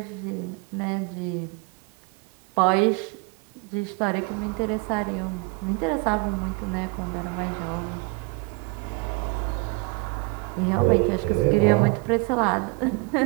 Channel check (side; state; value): left; quieter; 26.2 dB